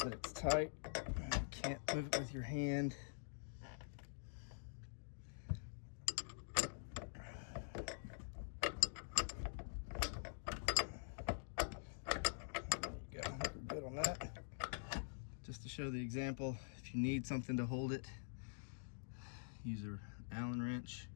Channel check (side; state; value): right; silent; digital silence